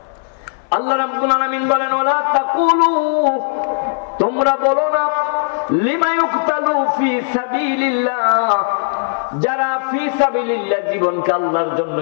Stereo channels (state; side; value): silent; right; 62 dB below the other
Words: আল্লাহ রাব্বুল আলামিন বলেন ওয়ালা তাকুলু, তোমরা বলো না, লিমা ইউকতালু ফি সাবিলিল্লাহ, যারা ফি সাবিলিল্লাহ জীবনকে আল্লাহর জন্য,